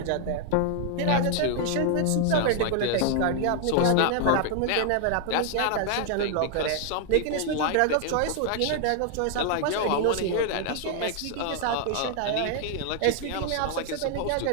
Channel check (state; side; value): different; both; correlation 0.00